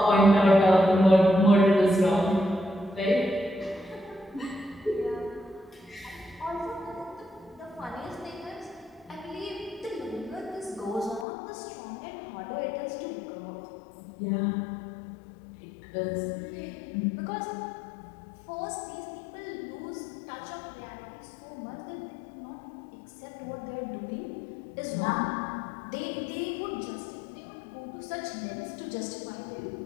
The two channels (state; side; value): drops out; right; at 11.2 s